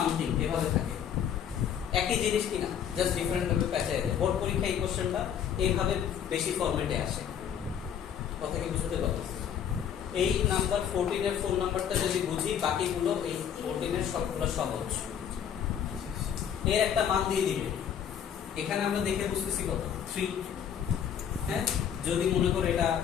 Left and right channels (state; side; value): quieter; right; 8.8 dB